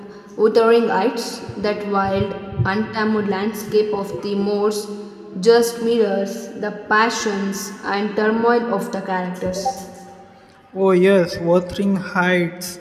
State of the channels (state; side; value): identical; both; correlation 1.00